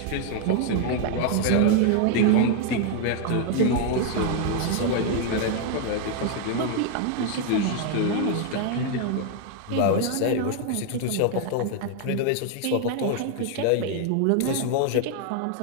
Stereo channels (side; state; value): both; different; correlation 0.00